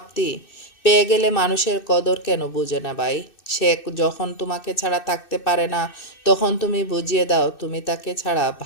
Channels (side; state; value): right; late; 2.6 ms